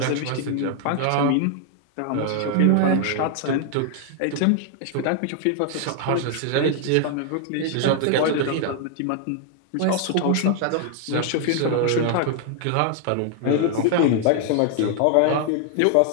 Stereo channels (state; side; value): different; both; correlation 0.00